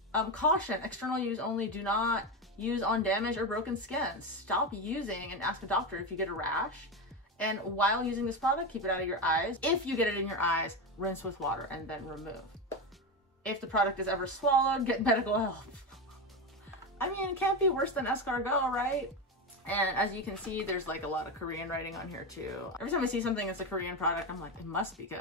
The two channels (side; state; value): both; normal; correlation 0.16